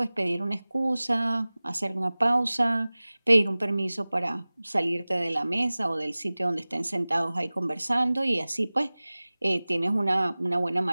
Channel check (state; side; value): inverted; both; correlation -0.99